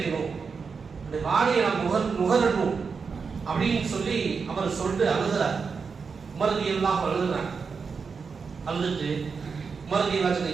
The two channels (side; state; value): left; quieter; 5.4 dB